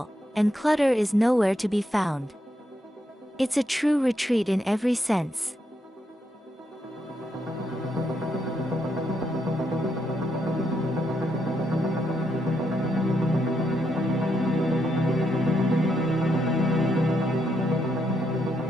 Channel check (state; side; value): normal; both; correlation 0.79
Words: and clutter is nowhere to be found. It's a true retreat in every sense.